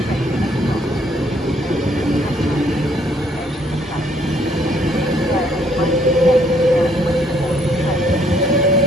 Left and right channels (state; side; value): normal; both; correlation 0.66